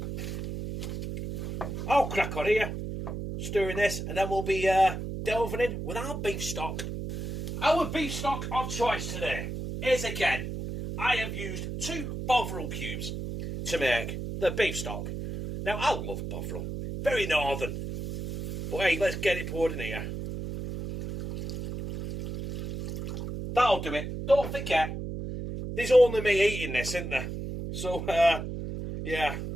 I'll crack on here, stirring this, and then we'll be delving in with our beef stock. Our beef stock of choice today is, again, I have used 2 Bovril cubes to make the beef stock. Now, I love Bovril. Very northern. But hey, let's get it poured in here. That'll do it. Don't forget, there's only me eating this, isn't there? So, yeah.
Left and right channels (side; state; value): right; noise; hum, 6 dB below the sound